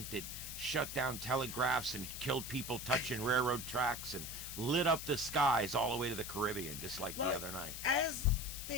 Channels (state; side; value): noise; left; hiss, 7 dB below the sound